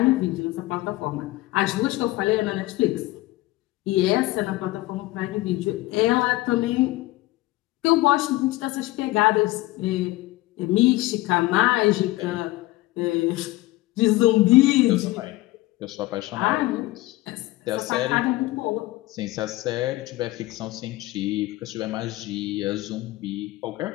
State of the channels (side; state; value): right; quieter; 18.4 dB